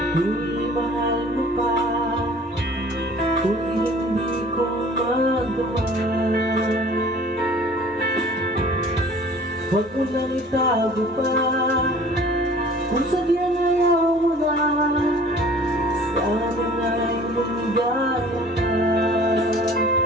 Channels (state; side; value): normal; both; correlation 0.48